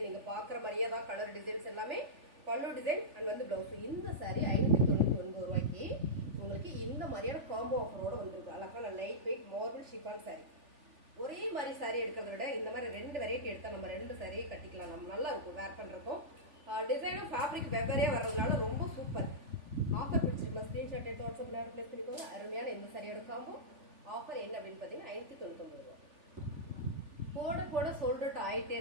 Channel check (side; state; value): left; late; 3.5 ms